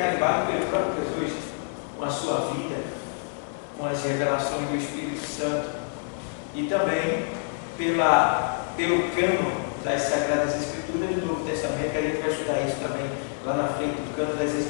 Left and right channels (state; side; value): silent; right; digital silence